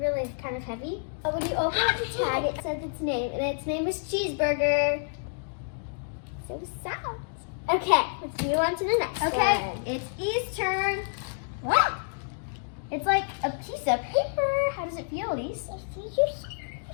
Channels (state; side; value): silent; right; digital silence